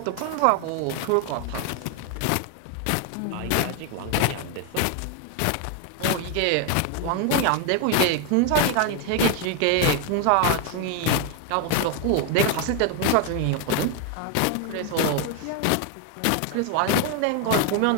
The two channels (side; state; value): both; different; correlation 0.01